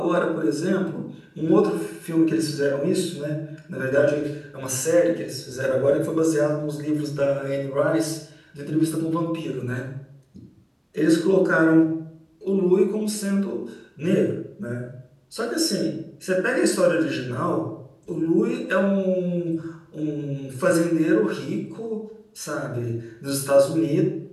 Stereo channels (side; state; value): both; identical; correlation 1.00